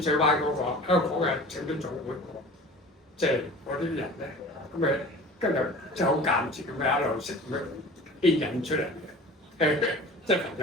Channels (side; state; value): both; normal; correlation 0.41